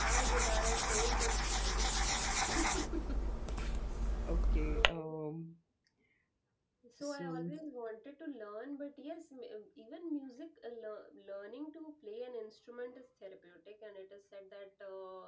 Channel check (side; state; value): both; identical; correlation 1.00